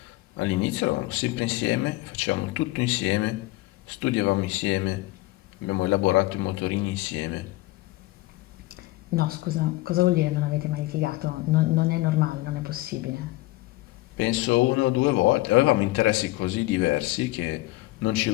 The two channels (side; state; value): right; quieter; 19.5 dB